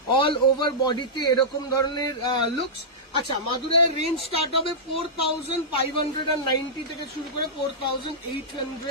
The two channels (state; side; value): normal; both; correlation -0.13